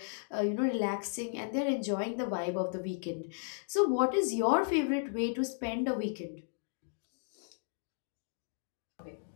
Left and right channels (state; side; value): silent; right; digital silence